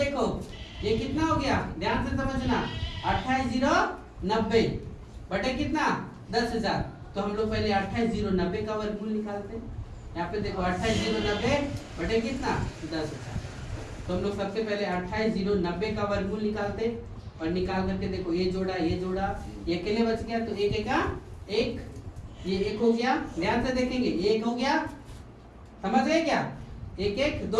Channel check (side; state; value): both; identical; correlation 1.00